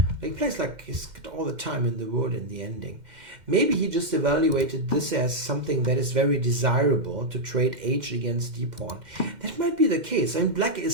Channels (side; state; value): left; late; 2.1 ms